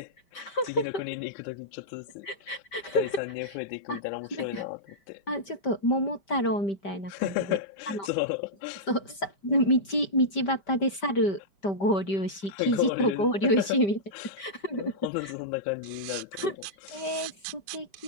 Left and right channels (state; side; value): late; right; 5.1 ms